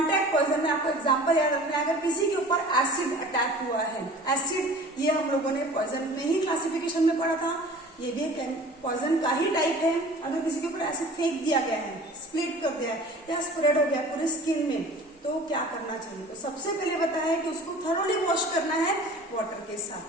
पॉइजन में आपको एग्जांपल याद रखना है, अगर किसी के ऊपर एसिड अटैक हुआ है, एसिड ये हम लोगों ने पॉइजन में ही क्लासिफिकेशन में पढ़ा था, ये भी पॉइजन का ही टाइप है। अगर किसी के ऊपर एसिड फेंक दिया गया है, स्प्लिट कर दिया है या स्प्रेड हो गया पूरी स्किन में, तो क्या करना चाहिए? तो सबसे पहले बताया है कि उसको थरोली वॉश करना है वाटर के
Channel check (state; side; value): normal; both; correlation 0.43